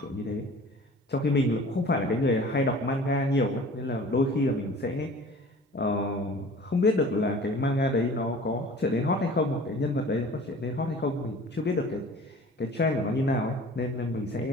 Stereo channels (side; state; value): both; normal; correlation 0.44